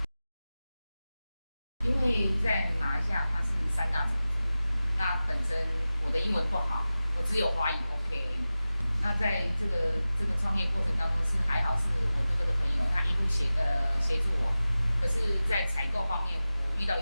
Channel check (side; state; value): both; inverted; correlation -0.95